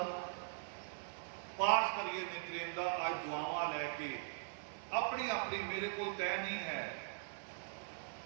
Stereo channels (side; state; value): left; silent; digital silence